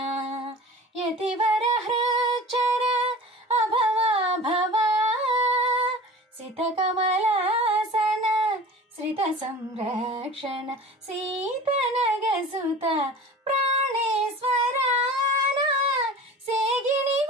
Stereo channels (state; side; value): normal; both; correlation 0.39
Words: యతివర హృచర అభవా భవా సిత కమలాసన శ్రిత సంరక్షణ సీతనగసుత ప్రాణేశ్వరాన సేగిని